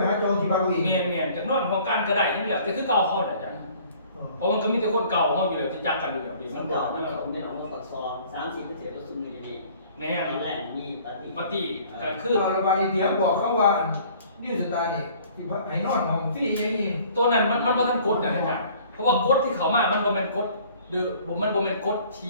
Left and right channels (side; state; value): both; inverted; correlation -0.53